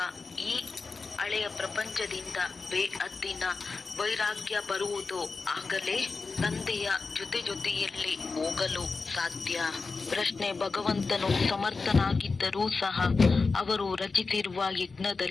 ಈ ಹಳೆಯ ಪ್ರಪಂಚದಿಂದ ಬೇಅದ್ದಿನ ವೈರಾಗ್ಯ ಬರುವುದೋ ಆಗಲೇ ತಂದೆಯ ಜೊತೆಯಲ್ಲಿ ಹೋಗಲು ಸಾಧ್ಯ. ಪ್ರಶ್ನೆ: ಭಗವಂತನು ಸಮರ್ಥನಾಗಿದ್ದರೂ ಸಹ ಅವರು ರಚಿಸಿರುವ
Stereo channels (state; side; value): quieter; right; 4.2 dB